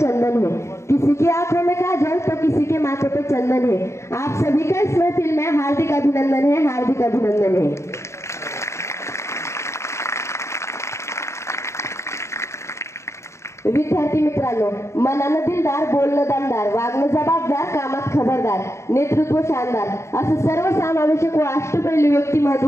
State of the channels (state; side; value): late; right; 0.14 ms